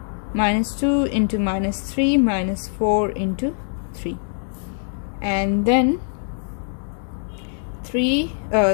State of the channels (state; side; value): silent; right; digital silence